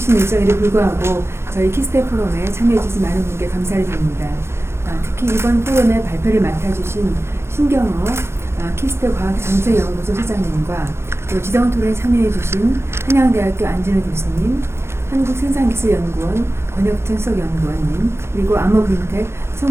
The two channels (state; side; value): late; left; 0.12 ms